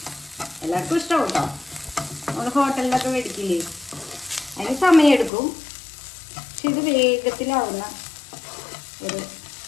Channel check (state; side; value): drops out; right; at 5.3 s